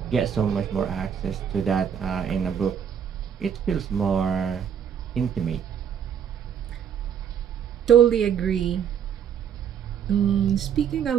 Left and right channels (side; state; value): left; quieter; 8.3 dB